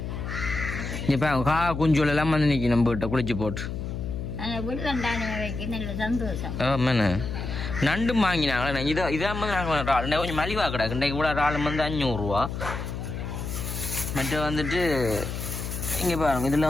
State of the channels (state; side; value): noise; left; hum, 5 dB below the sound